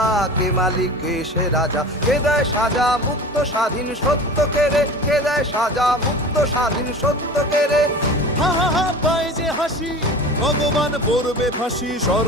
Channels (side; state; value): both; normal; correlation 0.36